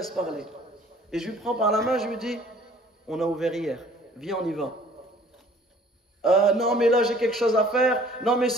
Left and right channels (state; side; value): normal; both; correlation 0.53